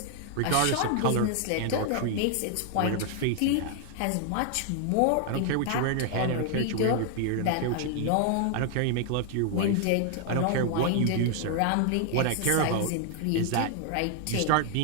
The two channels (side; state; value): both; different; correlation 0.00